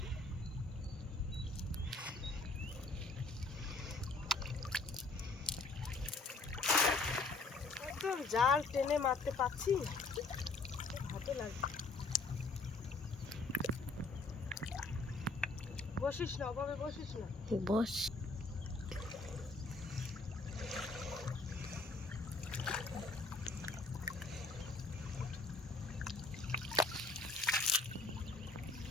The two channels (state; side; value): quieter; right; 3.4 dB